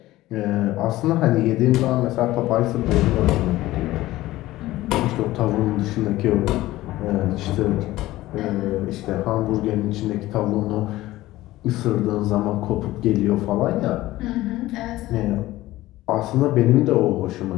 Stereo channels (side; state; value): right; quieter; 16.7 dB